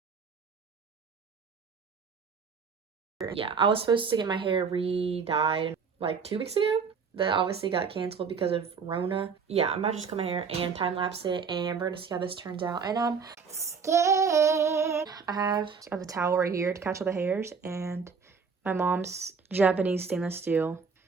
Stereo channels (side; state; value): left; quieter; 5.7 dB